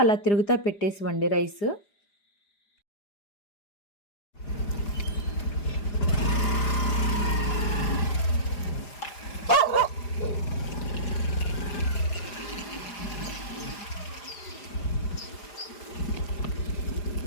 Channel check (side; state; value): right; late; 4.9 ms